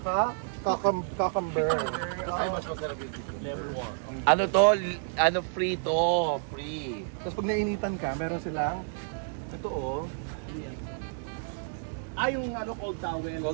cucumber. Ay, mas masarap yung dito. Ano to? Ano free to? Free. Tapos pag nainitan ka, meron silang ito oh, Yung ano, cold towel.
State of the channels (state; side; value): silent; left; digital silence